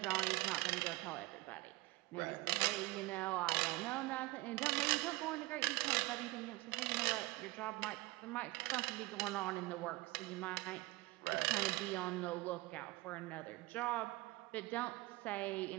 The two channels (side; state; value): left; quieter; 21.2 dB